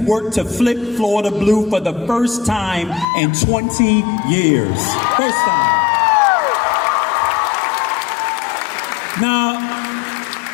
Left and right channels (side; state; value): right; drops out; at 3.1 s